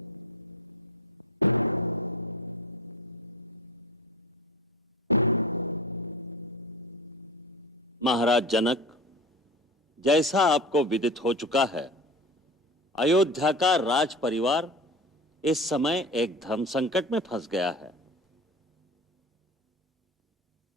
महाराज जनक, जैसा आपको विदित हो चुका है, अयोध्या का राज परिवार इस समय एक धर्म संकट में फंस गया है।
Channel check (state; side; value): normal; both; correlation 0.32